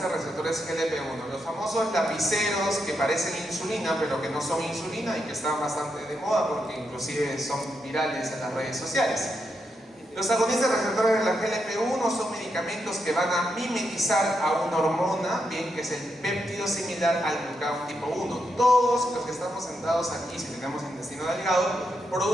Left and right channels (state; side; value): normal; both; correlation 0.82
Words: de receptores GLP-1, los famosos lapiceros que parecen insulina pero que no son insulina y que están bastante de moda porque inclusive son virales en las redes sociales. Los agonistas receptores de la GLP-1 son medicamentos que van a mimetizar a una hormona, bien, que es el péptido similar al glucagón tipo 1. Todos los que estamos sentados aquí, si tenemos intestino delgado,